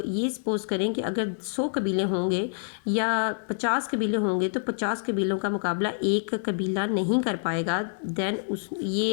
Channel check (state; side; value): silent; right; digital silence